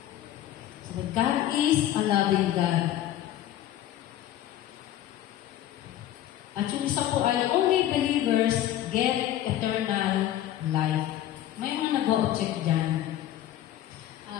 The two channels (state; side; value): quieter; right; 12.4 dB